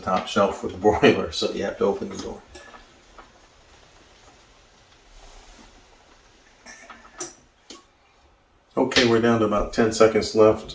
shelf with the broiler, so you have to open the door. Okay, we're down to about 10 seconds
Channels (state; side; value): identical; both; correlation 1.00